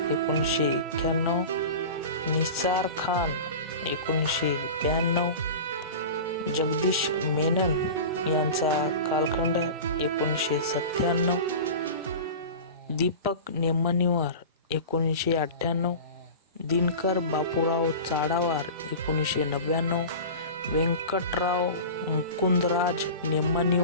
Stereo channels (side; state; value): both; inverted; correlation -0.32